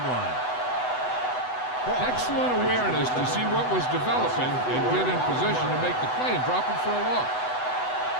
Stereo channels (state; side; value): late; right; 8.0 ms